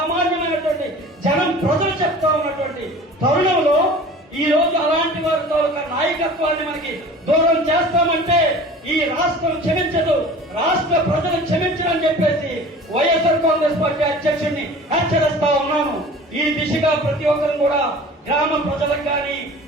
జనం, ప్రజలు చెప్తా ఉన్నటువంటి తరుణంలో ఈ రోజు అలాంటి వారి తాలూకా నాయకత్వాన్ని మనకి దూరం చేస్తామంటే ఈ రాష్ట్రం క్షమించదు, రాష్ట్ర ప్రజలు క్షమించరని చెప్పేసి వైఎస్ఆర్ కాంగ్రెస్ పార్టీ అధ్యక్షుడిని హెచ్చరిస్తా ఉన్నాను. ఈ దిశగా ప్రతి ఒక్కరు కూడా గ్రామ ప్రజలకు కానీ,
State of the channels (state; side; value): normal; both; correlation 0.42